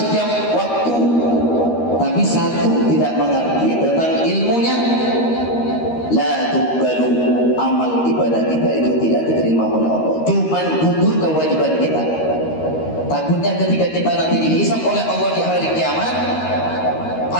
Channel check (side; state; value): right; late; 13 ms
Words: waktu, tapi satu tidak mengerti tentang ilmunya. La tuqbalu, amal ibadah kita itu tidak diterima oleh Allah. Cuman gugur kewajiban kita. Takutnya ketika kita nanti dihisab oleh Allah di hari kiamat,